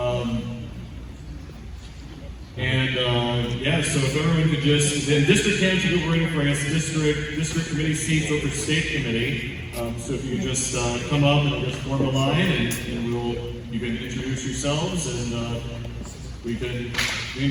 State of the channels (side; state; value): both; identical; correlation 1.00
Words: Yeah, so if everyone could just, then district candidates will be running for us, district committee seats over state committee. So if you could just come up and just form a line, and you can introduce yourselves, and we can